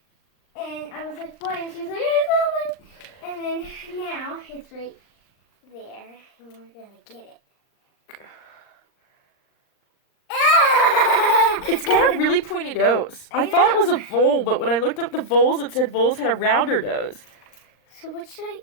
And I was like, what? And she was like, it's not like... And then now it's right there. And we're going to get it. It's got a really pointy nose. I thought it was a vole, but when I looked up the voles, it said voles had a rounder nose. So what should I...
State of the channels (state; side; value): late; right; 39 ms